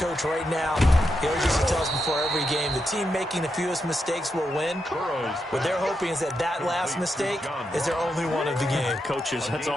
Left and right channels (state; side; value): normal; both; correlation 0.84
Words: right now. He always used to tell us before every game, the team making the fewest mistakes will win. What they're hoping is that that last mistake is their only one of the game. Coaches, that's